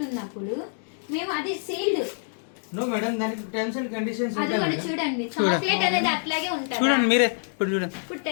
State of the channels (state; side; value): silent; right; 59 dB below the other